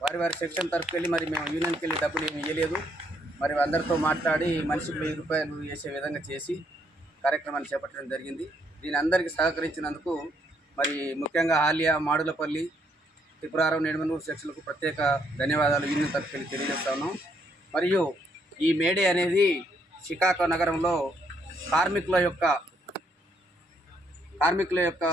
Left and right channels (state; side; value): normal; both; correlation 0.72